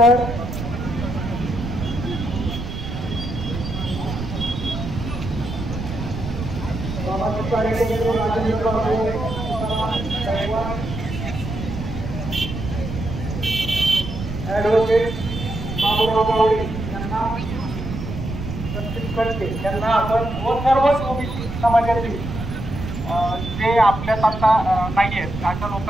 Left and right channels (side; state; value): right; noise; rumble, 6 dB below the sound